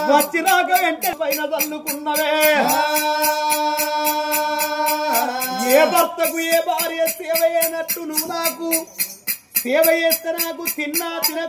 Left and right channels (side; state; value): both; identical; correlation 1.00